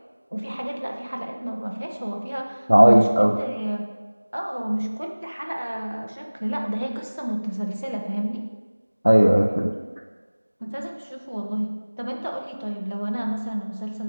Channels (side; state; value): both; inverted; correlation -1.00